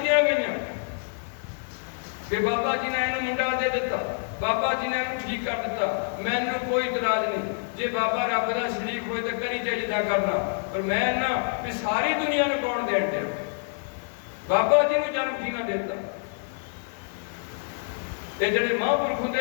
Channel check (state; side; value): silent; right; 60 dB below the other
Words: ਗਈਆਂ ਕਿ ਬਾਬਾ ਜੀ ਨੇ ਇਹਨੂੰ ਮੁੰਡਾ ਦੇ ਦਿੱਤਾ, ਬਾਬਾ ਜੀ ਨੇ ਇਹਨੂੰ ਠੀਕ ਕਰ ਦਿੱਤਾ। ਮੈਨੂੰ ਕੋਈ ਇਤਰਾਜ਼ ਨਹੀਂ, ਜੇ ਬਾਬਾ ਰੱਬ ਦਾ ਸ਼ਰੀਕ ਹੋਏ ਤਾਂ ਕਰੀ ਜੇ ਜਿੱਦਾਂ ਕਰਨਾ। ਪਰ ਮੈਂ ਨਾ ਵੀ ਸਾਰੀ ਦੁਨੀਆ ਨੂੰ ਕੌਣ ਦੇਣ ਡਿਆ? ਬਾਬਾ ਜੀ ਨੂੰ ਜਨਮ ਕਿਹਨਾਂ ਦੇ ਦਿੱਤਾ? ਇਹ ਜਿਹੜੇ ਮਹਾਂਪੁਰਖ